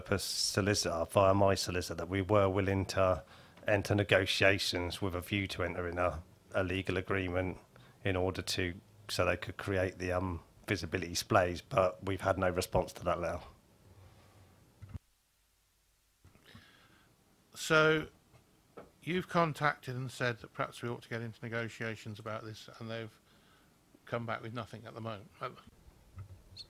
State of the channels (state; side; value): identical; both; correlation 1.00